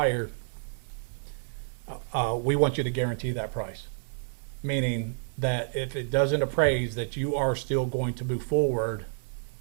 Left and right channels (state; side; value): silent; left; 58 dB below the other